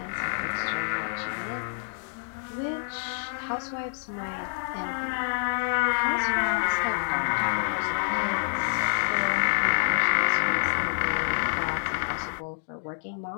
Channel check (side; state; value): right; silent; digital silence